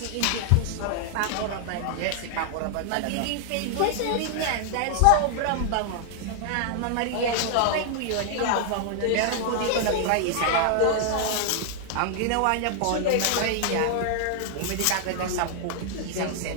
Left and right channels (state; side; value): different; both; correlation 0.00